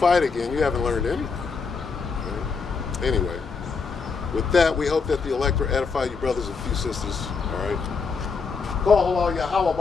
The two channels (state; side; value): quieter; right; 5.1 dB